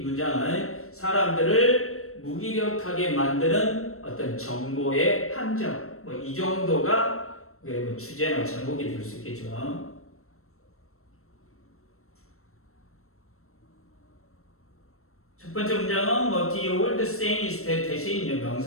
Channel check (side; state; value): right; late; 0.63 ms